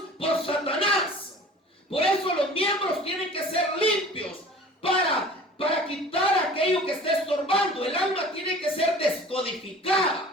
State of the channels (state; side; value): normal; both; correlation 0.43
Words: por Satanás. Por eso los miembros tienen que ser limpios para quitar aquello que está estorbando. El alma tiene que ser